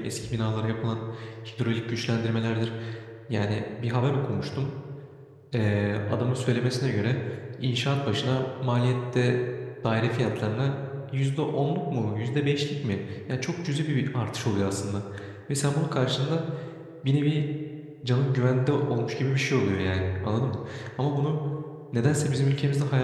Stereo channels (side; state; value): both; identical; correlation 1.00